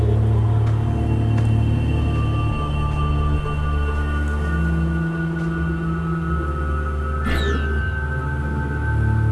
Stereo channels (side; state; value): both; identical; correlation 1.00